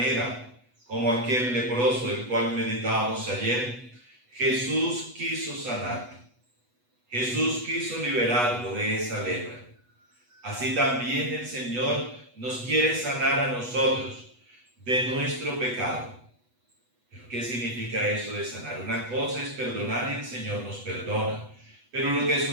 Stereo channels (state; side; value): late; left; 8.1 ms